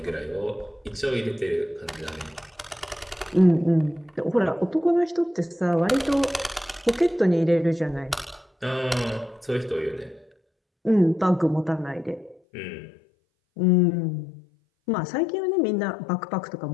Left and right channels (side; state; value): right; drops out; at 12.4 s